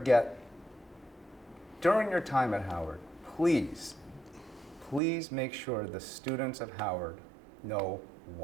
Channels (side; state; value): left; drops out; at 5.0 s